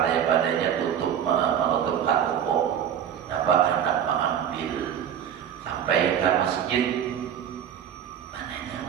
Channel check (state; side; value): quieter; left; 9.2 dB